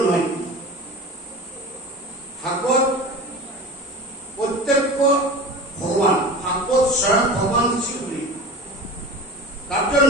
নয়। ভাগবত প্রত্যক্ষ ভগবান, ভাগবত স্বয়ং ভগবান শ্রীহরি। তার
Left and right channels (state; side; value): normal; both; correlation 0.34